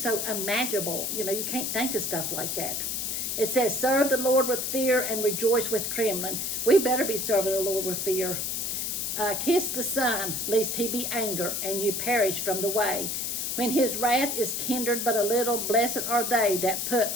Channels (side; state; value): left; noise; hiss, 1 dB below the sound